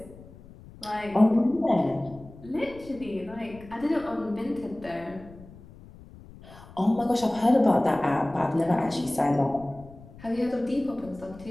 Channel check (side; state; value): left; noise; rumble, 20 dB below the sound